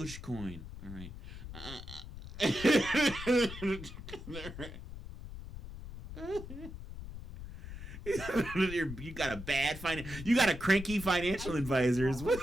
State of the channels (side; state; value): left; noise; rumble, 11 dB below the sound